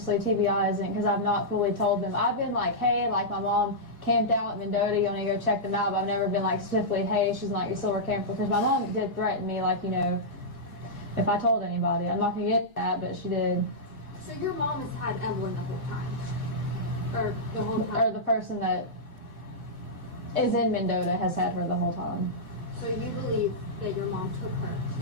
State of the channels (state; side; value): normal; both; correlation -0.12